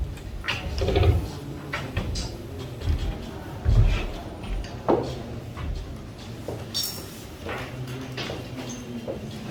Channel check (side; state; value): both; identical; correlation 1.00